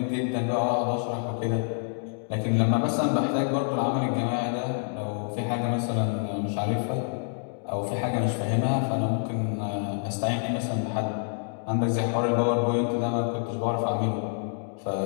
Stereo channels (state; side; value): silent; right; digital silence